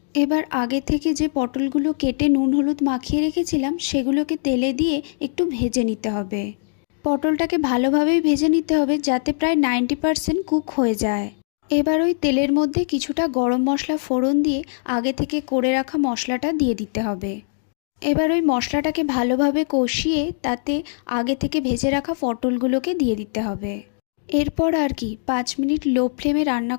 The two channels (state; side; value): silent; right; digital silence